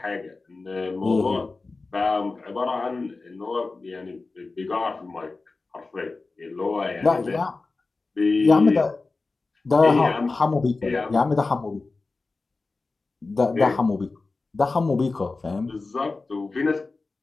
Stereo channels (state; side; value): quieter; right; 3.7 dB